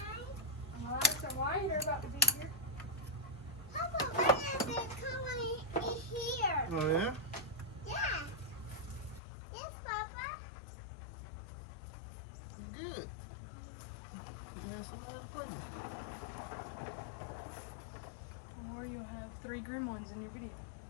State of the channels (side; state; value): right; drops out; at 9.2 s